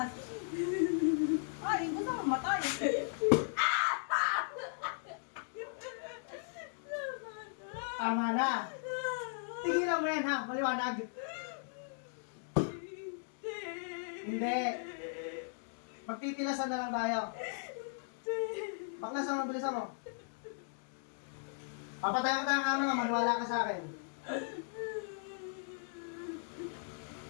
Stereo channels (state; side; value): silent; right; digital silence